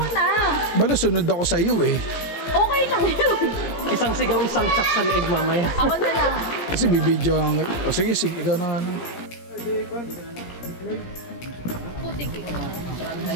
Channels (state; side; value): late; right; 17 ms